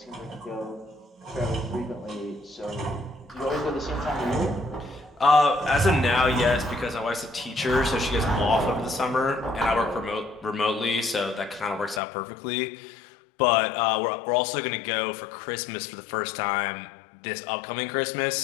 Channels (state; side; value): drops out; right; at 12.0 s